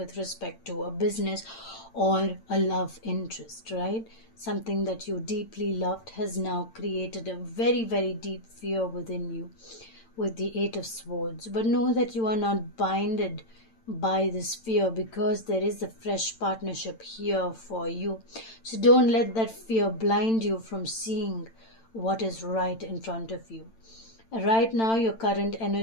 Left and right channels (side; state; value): right; late; 8.9 ms